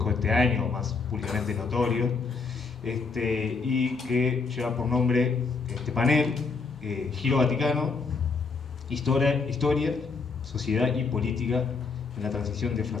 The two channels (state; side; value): quieter; right; 4.6 dB